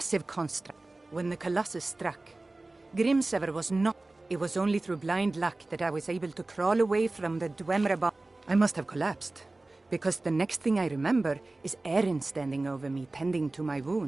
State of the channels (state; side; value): quieter; left; 3.0 dB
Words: construct. When the Colossus struck, Grimsever was not... It was only through blind luck that I was able to crawl away from the Dwemer. I must have collapsed, because the next thing I remember is Erin standing over me, tending to my